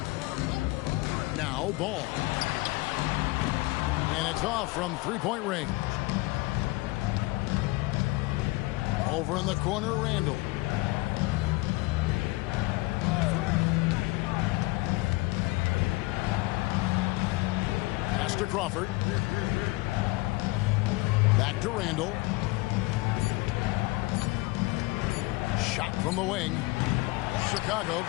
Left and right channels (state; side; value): quieter; right; 22.3 dB